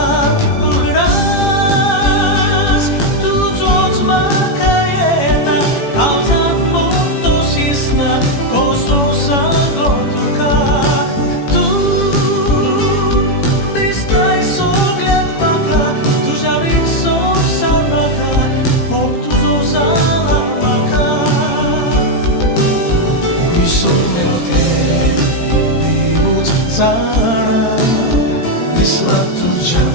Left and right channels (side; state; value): right; late; 18 ms